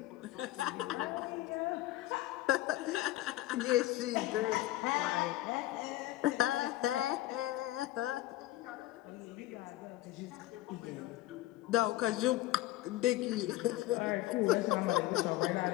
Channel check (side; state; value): right; quieter; 16.1 dB